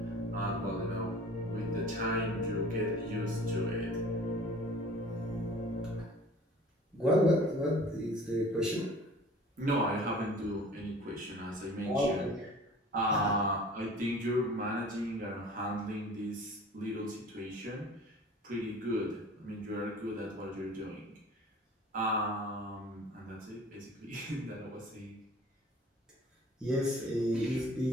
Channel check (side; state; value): both; normal; correlation 0.46